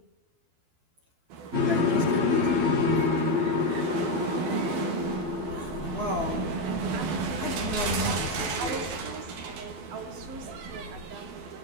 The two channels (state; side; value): late; left; 12 ms